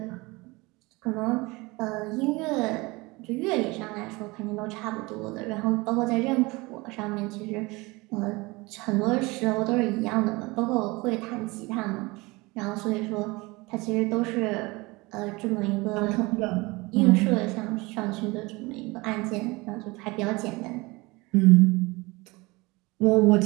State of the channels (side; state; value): left; quieter; 23.6 dB